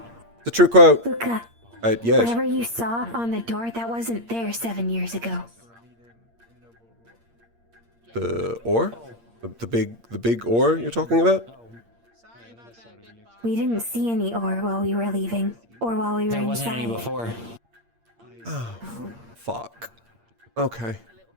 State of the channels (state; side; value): late; left; 8.6 ms